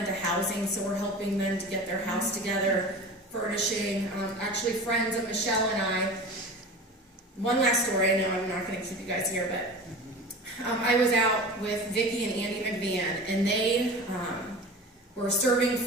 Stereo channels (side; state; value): both; normal; correlation 0.35